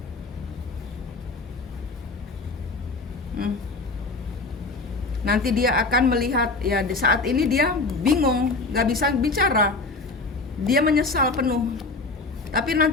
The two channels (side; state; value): right; quieter; 3.7 dB